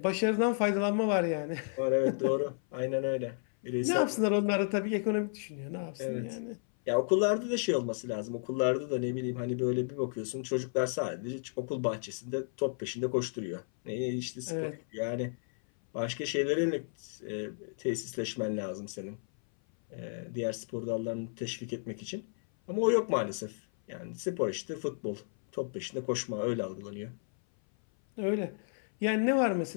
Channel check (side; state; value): right; silent; 56 dB below the other